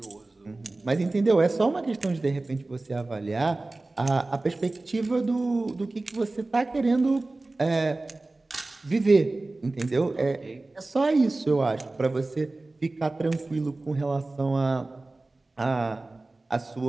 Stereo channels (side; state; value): left; quieter; 3.1 dB